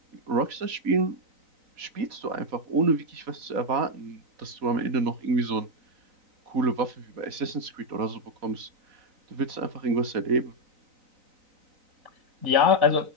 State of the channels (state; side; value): late; left; 4.2 ms